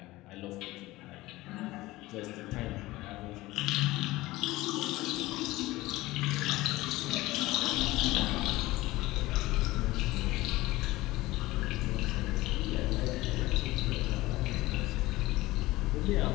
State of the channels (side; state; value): right; quieter; 18.7 dB